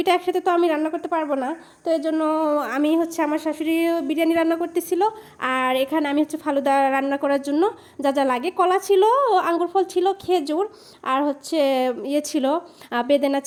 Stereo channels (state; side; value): identical; both; correlation 1.00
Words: একসাথে তো আমি রান্না করতে পারবো না, তো এই জন্য আমি হচ্ছে আমার শাশুড়ি বিরিয়ানি রান্না করতেছিল, আর এখানে আমি হচ্ছে ফালুদা রান্না করার জন্য যা যা লাগে, কলা ছিল, আঙ্গুর ফল ছিল, খেজুর, আর হচ্ছে ইয়ে ছিল, বেদেনা